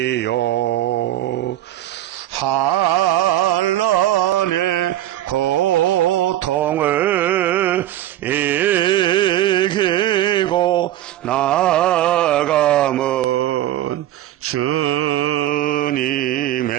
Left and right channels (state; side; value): quieter; left; 13.6 dB